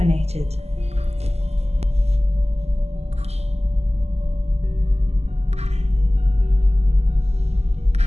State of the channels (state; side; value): late; left; 0.30 ms